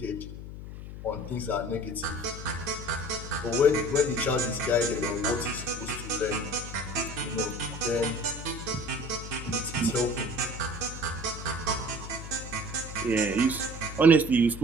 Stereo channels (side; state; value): left; noise; hum, 10 dB below the sound